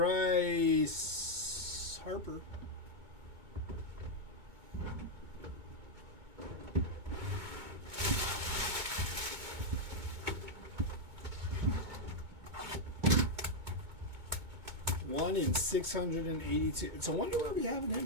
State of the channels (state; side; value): late; left; 2.2 ms